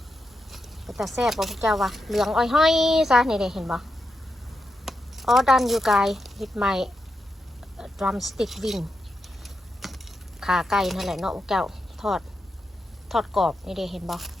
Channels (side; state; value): both; normal; correlation 0.86